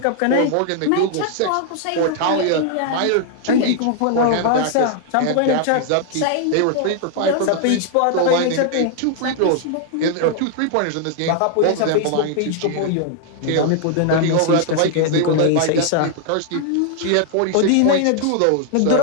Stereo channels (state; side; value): different; both; correlation 0.00